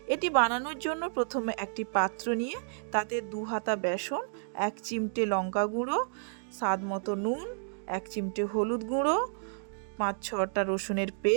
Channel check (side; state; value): left; silent; digital silence